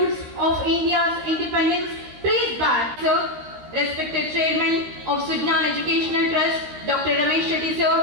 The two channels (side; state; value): left; late; 13 ms